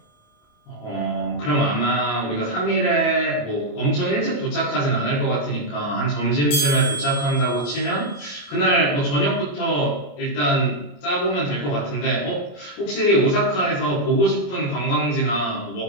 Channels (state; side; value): late; right; 28 ms